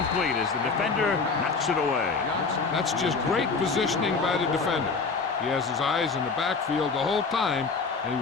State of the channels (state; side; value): quieter; right; 4.6 dB